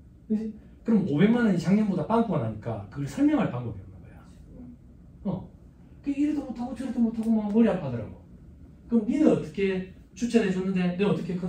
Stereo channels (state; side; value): identical; both; correlation 1.00